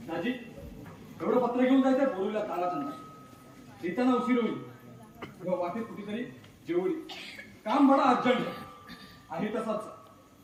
दाजी, एवढं पत्र घेऊन जायचं बोलूला ताराचंद्र. येताना उशीर होईल. किंवा वाटेत कुठेतरी जेवढी काम बडा अर्जंट आहे तसाच.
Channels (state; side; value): identical; both; correlation 1.00